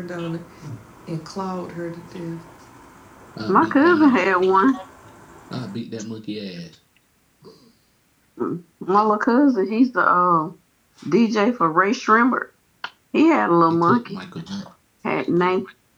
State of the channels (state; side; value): identical; both; correlation 1.00